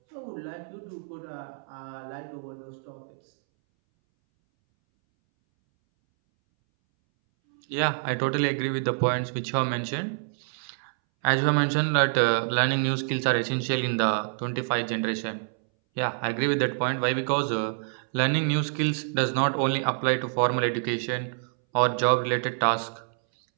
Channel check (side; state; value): left; silent; 60 dB below the other